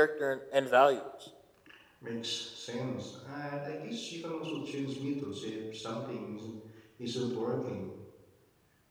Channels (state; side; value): identical; both; correlation 1.00